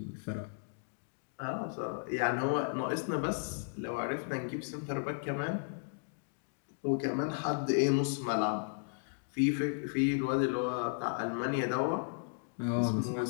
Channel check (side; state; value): right; silent; digital silence